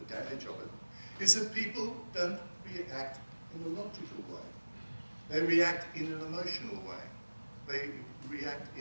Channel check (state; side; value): inverted; both; correlation -1.00